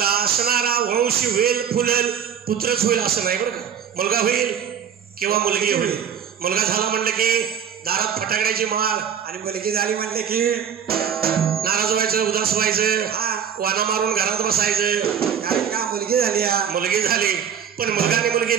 असणारा वंश वेल फुलल, पुत्रच होईल असं नाही बरं का. मुलगा होईल किंवा मुलगी होईल. मुलगा झाला म्हणलं की दारात फटाकड्याची माळ आणि मुलगी झाली म्हणले की नाराज व्हायचं, उदास व्हायचं, वाना मारून घरात बसायचं. कारण का मुलगी झाली मुलगी झाली पण मुलगा आणि मुलगी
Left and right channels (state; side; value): quieter; left; 8.0 dB